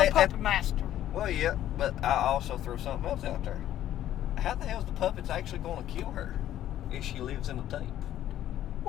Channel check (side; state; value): right; quieter; 12.2 dB